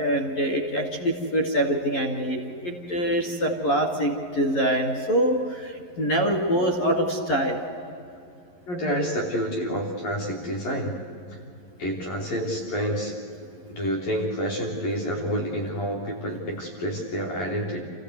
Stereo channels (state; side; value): late; right; 11 ms